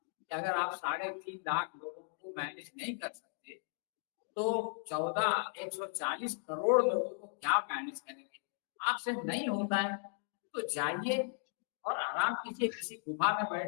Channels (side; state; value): right; silent; 53 dB below the other